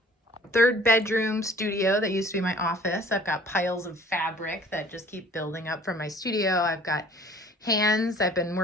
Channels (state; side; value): normal; both; correlation 0.52